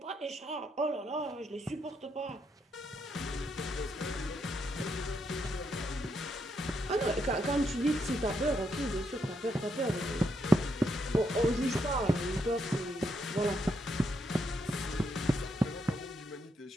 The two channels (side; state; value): both; normal; correlation 0.78